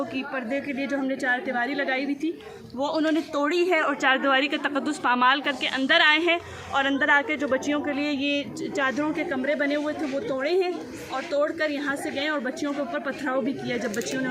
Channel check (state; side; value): identical; both; correlation 1.00